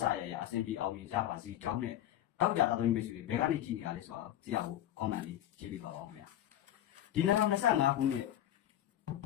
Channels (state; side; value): quieter; right; 12.2 dB